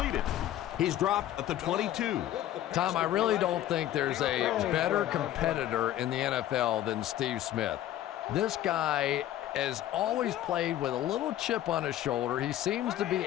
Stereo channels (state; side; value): quieter; right; 12.8 dB